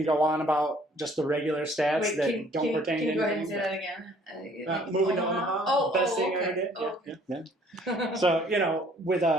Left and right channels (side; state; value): both; normal; correlation 0.58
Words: go on about just the regular stats that don't pertain to anything. Can you go ahead and say that again? Moving to Omaha, best thing I ever did. Oh, okay. Yeah. So, with